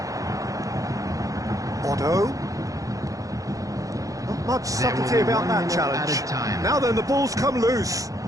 Otto. Not much subtlety about that challenge. Now then, the ball's come loose.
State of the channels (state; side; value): late; left; 0.17 ms